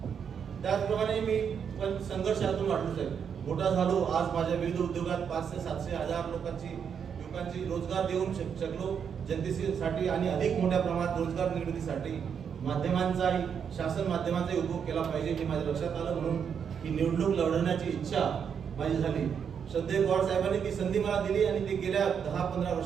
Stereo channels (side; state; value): left; quieter; 7.3 dB